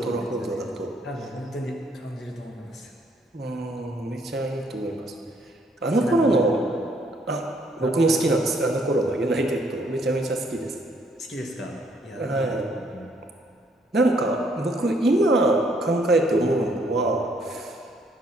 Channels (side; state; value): both; normal; correlation 0.67